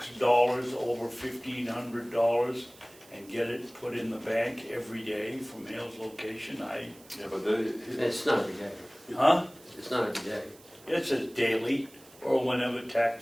dollars over $1,500 and get it put in the bank every day from Hale's location? Yeah, but It's not every day. Huh? It's not every day. It says daily or whenever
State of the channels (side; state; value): right; noise; hiss, 24 dB below the sound